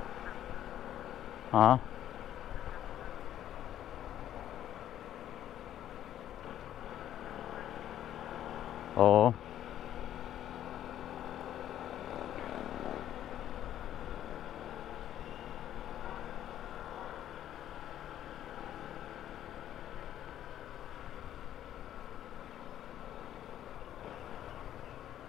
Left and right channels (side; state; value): right; quieter; 11.6 dB